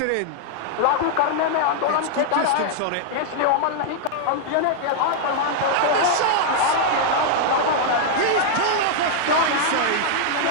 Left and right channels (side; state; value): both; different; correlation -0.01